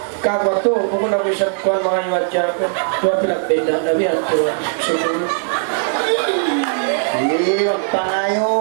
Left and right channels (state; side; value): silent; left; digital silence